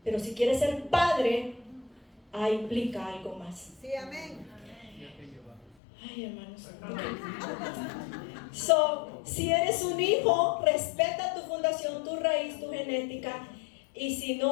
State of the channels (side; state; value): right; drops out; at 5.8 s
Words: Pero si quieres ser padre, implica algo más. Sí, amén. Ay, hermanos. Si eres un hijo, respeta tu fundación, tu raíz, tu genética. Y si